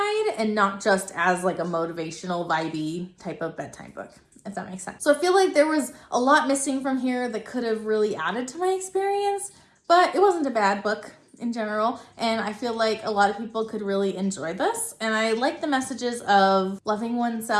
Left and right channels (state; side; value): identical; both; correlation 1.00